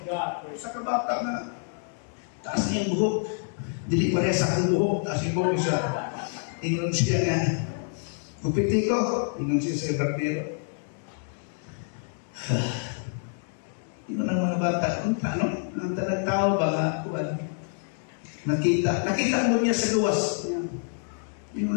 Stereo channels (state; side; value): silent; right; 60 dB below the other